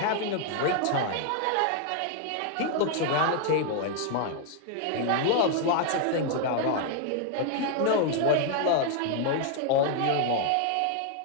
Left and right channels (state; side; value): different; both; correlation 0.00